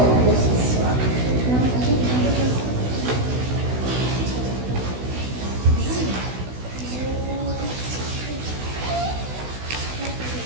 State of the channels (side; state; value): left; late; 16 ms